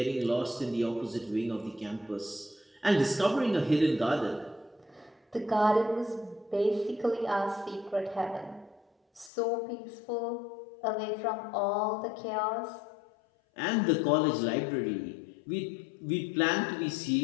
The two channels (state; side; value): drops out; right; at 9.3 s